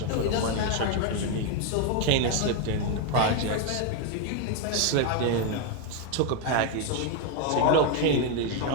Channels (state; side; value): different; both; correlation 0.01